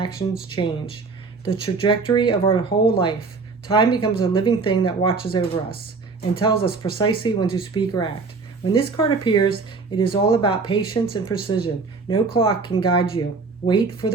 change. The trajectory of our whole life. Time becomes a living thing that watches over us and tells us precisely when to speak or act. When this card appears, it is all about patience and precision. No clock can guide you. Wait for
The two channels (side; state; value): left; quieter; 4.3 dB